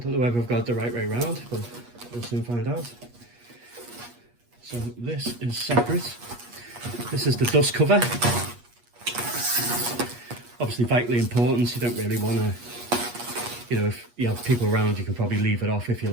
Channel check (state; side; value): late; left; 8.4 ms